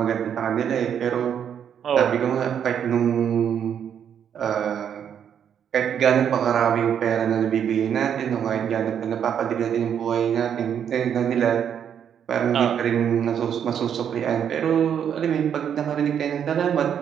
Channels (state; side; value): quieter; left; 8.5 dB